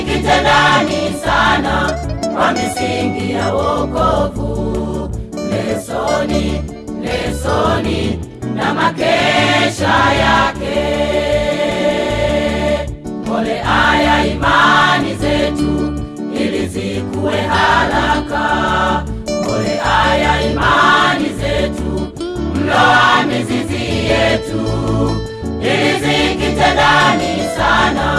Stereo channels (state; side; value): identical; both; correlation 1.00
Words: ndani sana kwa misingi ya wokovu. Lesoni, lesoni na makesha yake, mbolea ya imani zetu ili zikue haraka, mbolea ya imani zetu, mlo wa mizizi yetu, ili zikite ndani